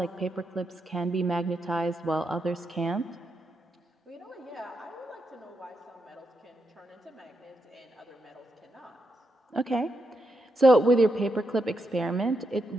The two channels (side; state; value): both; normal; correlation 0.83